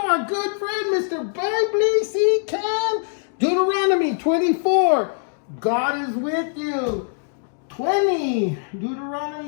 our good friend, Mr. Bible C. Can. Deuteronomy 24, God is with you. 20,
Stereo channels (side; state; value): right; silent; digital silence